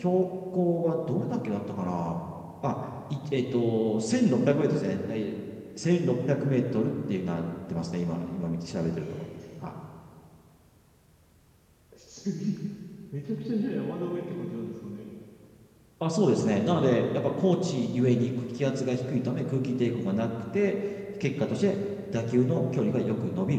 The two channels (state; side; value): identical; both; correlation 1.00